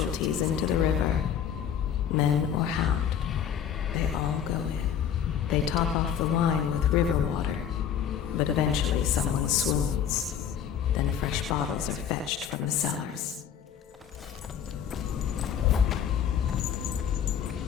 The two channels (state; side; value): quieter; right; 8.7 dB